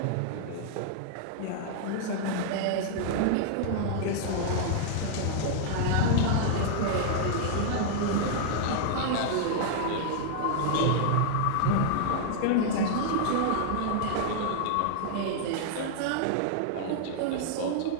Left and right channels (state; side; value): different; both; correlation -0.01